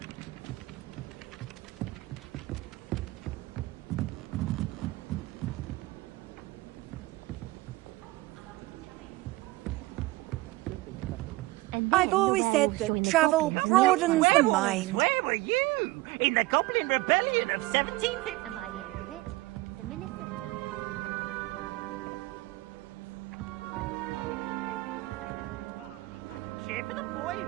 I've always said that travel broadens the mind. Where were you? In the Goblin Rebellion of 1750? And by the end of it, the Minister for Magic... Say my goodbyes. I shall cheer for the boy who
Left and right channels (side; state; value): left; quieter; 20.2 dB